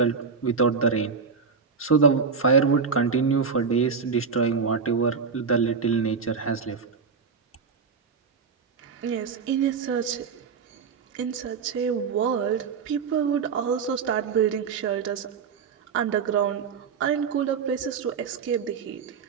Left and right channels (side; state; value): left; quieter; 5.6 dB